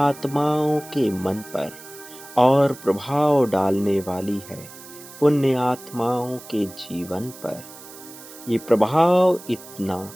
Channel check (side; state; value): right; noise; hiss, 17 dB below the sound